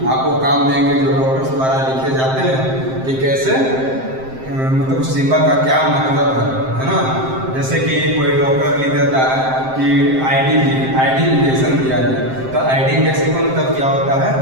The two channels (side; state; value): left; late; 7.6 ms